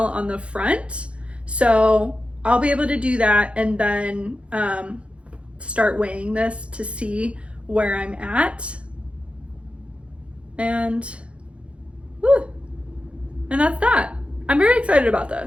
on the front. So I'll be able to do that and then start weighing this to see where I'm at. And, whew, and that's that. I'm very excited about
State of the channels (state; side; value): late; left; 0.060 ms